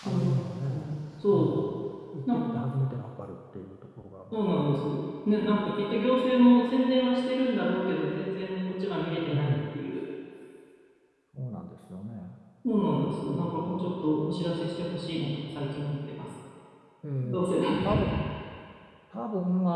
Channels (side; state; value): both; identical; correlation 1.00